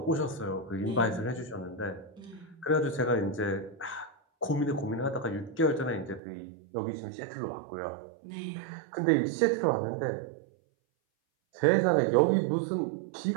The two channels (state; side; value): drops out; left; at 6.2 s